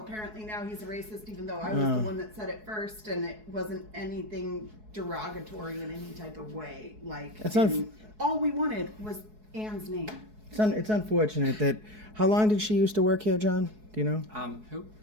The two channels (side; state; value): left; late; 4.7 ms